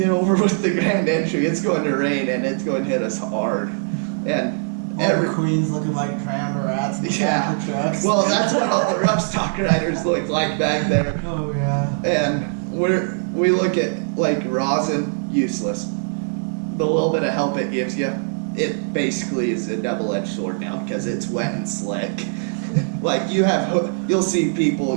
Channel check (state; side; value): silent; left; 65 dB below the other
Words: over with the grand entry. It's going to rain and it's going to hit us hard. And All the queens looking like drowned rats in the back of the trucks. well, that's what all the rough stock riders look like back there. Oh yeah. And we look at like rosin, useless. The little bit of help it gives you, it basically is a double-edged sword now because it's wet and slick. Like you'll see people